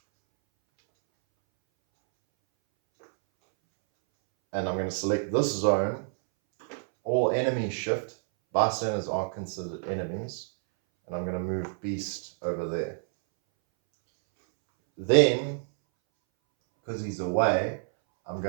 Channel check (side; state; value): left; silent; 59 dB below the other